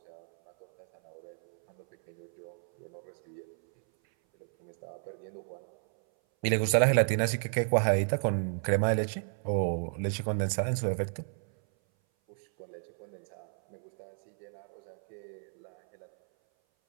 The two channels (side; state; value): left; silent; 56 dB below the other